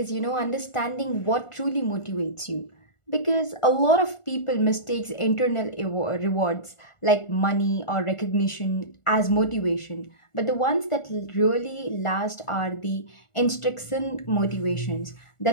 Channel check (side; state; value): right; late; 1.4 ms